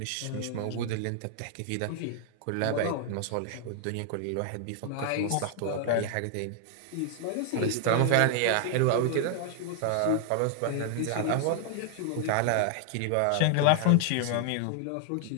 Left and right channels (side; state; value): both; different; correlation 0.00